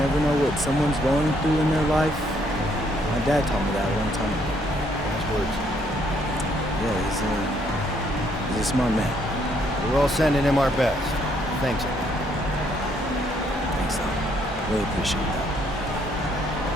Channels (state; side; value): normal; both; correlation 0.69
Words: know what someone's going through in their life. My dad taught me that a long time ago. Nice words. Yeah, he's a smart man. We're all sending him our best. Thanks, MP. Thanks, Tom. Really appreciate that.